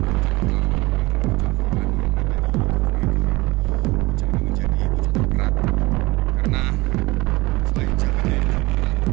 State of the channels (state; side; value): quieter; left; 22.4 dB